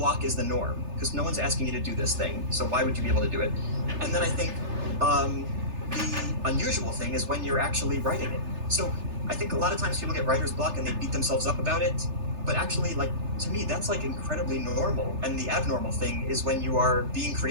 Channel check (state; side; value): late; left; 3.3 ms